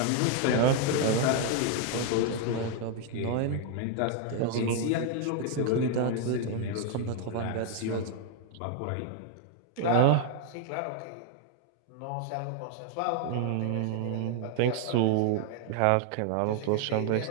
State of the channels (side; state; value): both; different; correlation 0.00